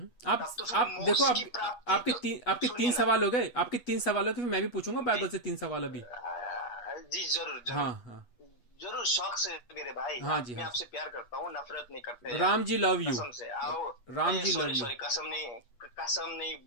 तब तो फिर आप देखो, मोक्ष की प्राप्ति तो, आपके तीन सुनिए ना। सवाल हो गए, आपके तीन सवाल हो गए, फिर मैं भी पूछूंगा जी बाइबल से तीन सवाल अभी। जी जरूर हाँ जरूर हाँ जरूर, शौक से मेरे भाई, हाँ आप जी, मैं हाँ आपसे प्यार करता हूँ, नफरत नहीं करते जी। यार। Ram ji love you. कसम से आओ। Ram ji love sorry you. Sorry, कसम नहीं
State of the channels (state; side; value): late; right; 8.2 ms